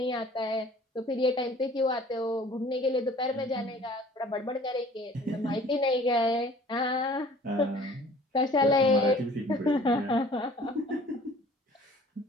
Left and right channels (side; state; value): both; normal; correlation 0.51